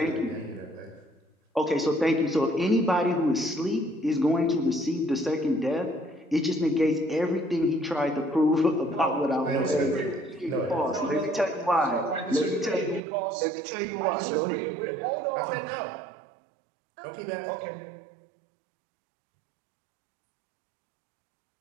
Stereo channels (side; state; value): left; drops out; at 13.0 s